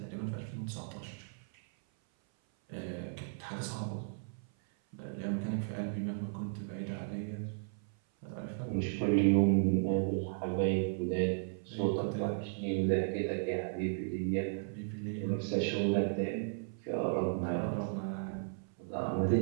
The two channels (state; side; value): silent; left; 54 dB below the other